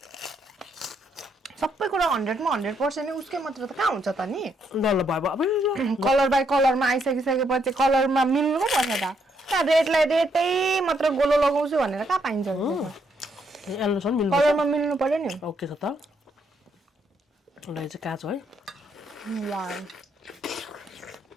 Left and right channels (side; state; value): both; normal; correlation 0.74